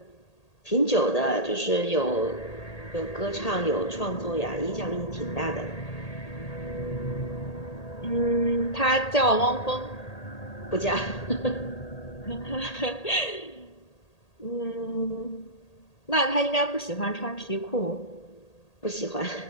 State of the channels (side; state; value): right; late; 1.8 ms